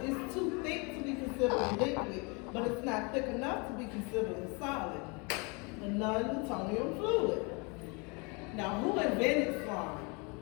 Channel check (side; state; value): right; quieter; 30.8 dB